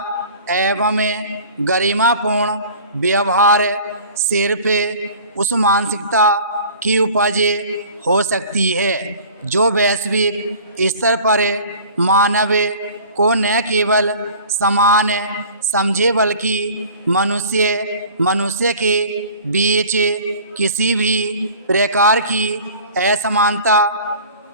एवं गरिमापूर्ण व्यवहार सिर्फ उस मानसिकता की उपज हो सकती है जो वैश्विक स्तर पर मानव को न केवल समान समझे बल्कि मनुष्य के बीच किसी भी प्रकार की असमानता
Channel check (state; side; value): inverted; both; correlation -0.45